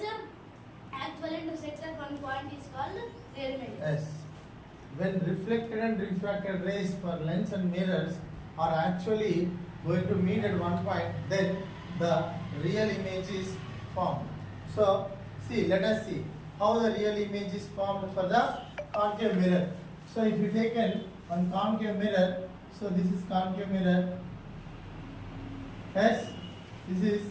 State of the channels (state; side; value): identical; both; correlation 1.00